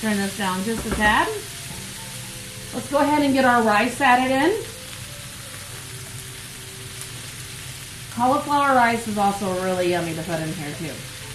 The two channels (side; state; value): both; identical; correlation 1.00